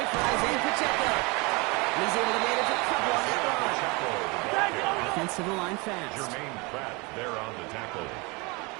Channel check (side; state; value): left; quieter; 27.5 dB